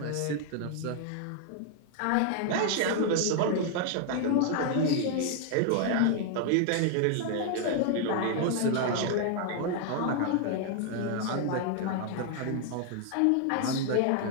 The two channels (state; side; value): different; both; correlation 0.00